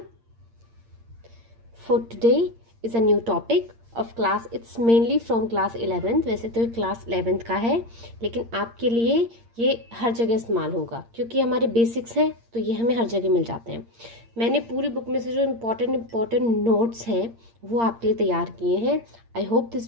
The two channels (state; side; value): late; left; 8.7 ms